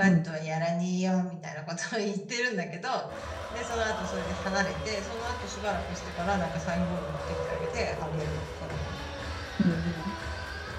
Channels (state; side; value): identical; both; correlation 1.00